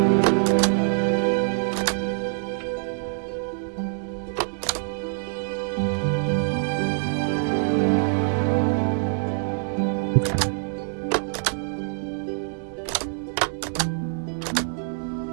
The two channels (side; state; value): left; silent; digital silence